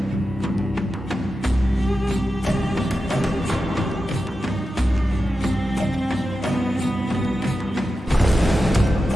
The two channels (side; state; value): both; normal; correlation 0.91